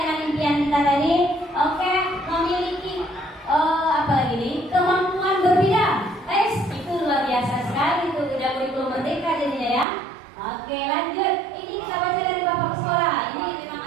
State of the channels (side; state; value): left; drops out; at 9.9 s